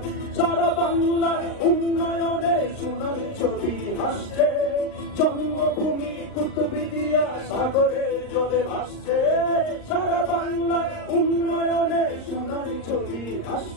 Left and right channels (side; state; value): right; late; 38 ms